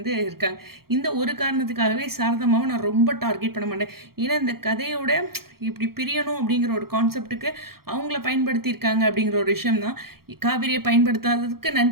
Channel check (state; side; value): late; left; 0.94 ms